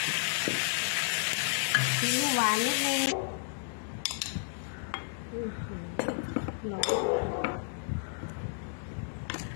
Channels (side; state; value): right; silent; digital silence